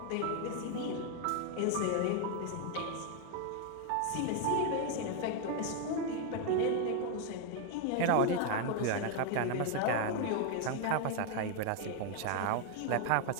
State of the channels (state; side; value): different; both; correlation 0.01